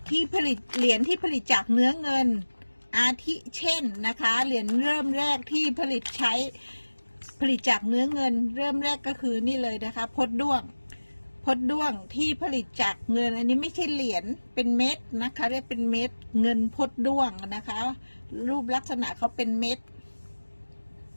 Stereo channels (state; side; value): inverted; both; correlation -1.00